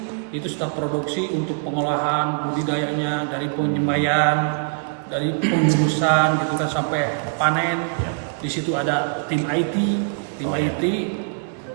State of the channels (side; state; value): left; silent; digital silence